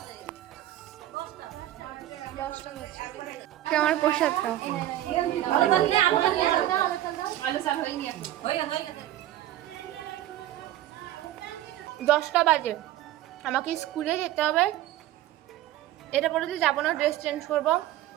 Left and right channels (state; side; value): quieter; left; 13.8 dB